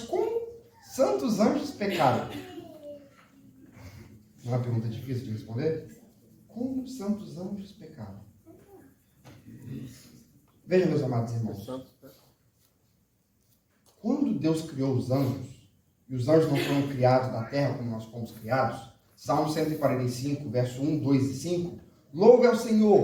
como santos anjos pecaram? Não é uma pergunta difícil de responder? Como santos anjos pecaram? Veja, meus amados irmãos. Quando Deus criou os anjos, e os anjos não foram criados da terra como nós fomos criados, Salmo 145, verso 1, 2 e 5, louve ao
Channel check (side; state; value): both; identical; correlation 1.00